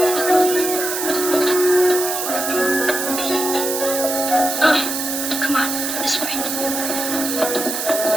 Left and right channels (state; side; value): noise; right; hiss, 3 dB below the sound